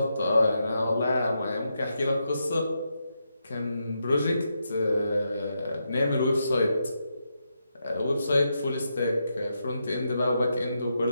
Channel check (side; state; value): both; inverted; correlation -0.84